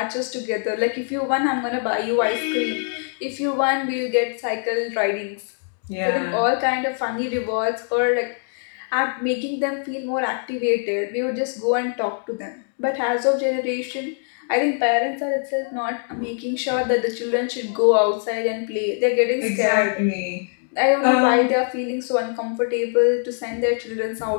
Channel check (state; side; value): silent; right; 55 dB below the other